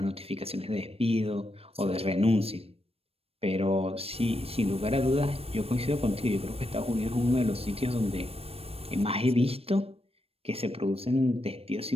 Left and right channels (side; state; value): left; late; 0.28 ms